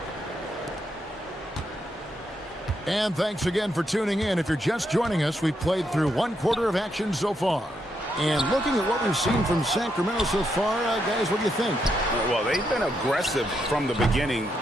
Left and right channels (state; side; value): normal; both; correlation 0.80